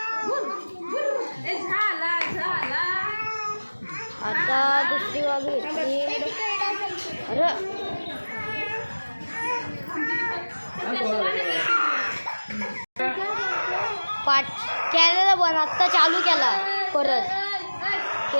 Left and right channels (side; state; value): both; inverted; correlation -1.00